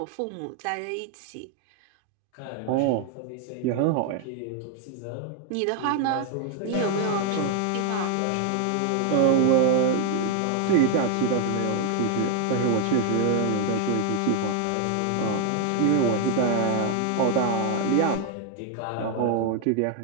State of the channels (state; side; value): different; both; correlation 0.00